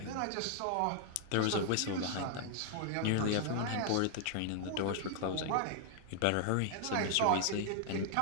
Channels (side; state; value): both; different; correlation 0.00